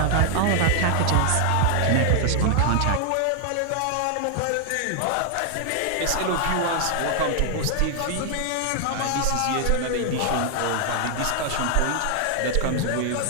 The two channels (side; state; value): both; different; correlation 0.00